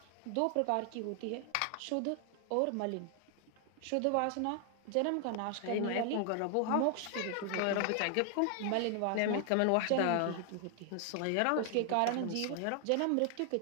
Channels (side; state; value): both; different; correlation 0.00